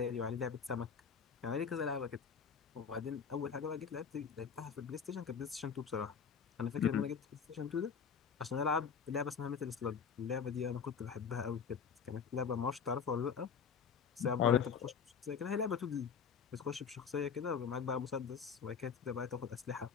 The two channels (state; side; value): quieter; right; 6.4 dB